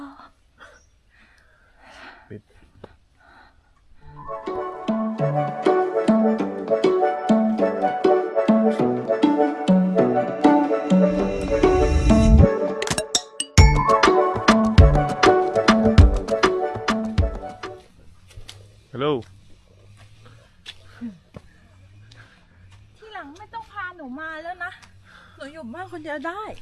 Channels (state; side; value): identical; both; correlation 1.00